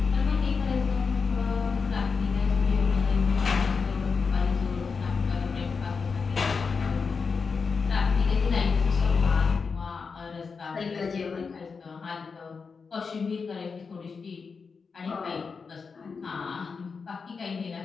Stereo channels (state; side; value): quieter; right; 5.2 dB